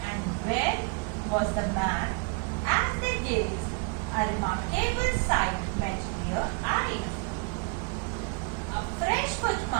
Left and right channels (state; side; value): quieter; left; 35.3 dB